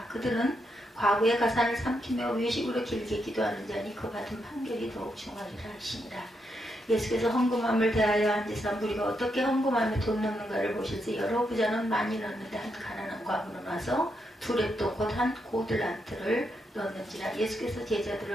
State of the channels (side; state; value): both; normal; correlation 0.81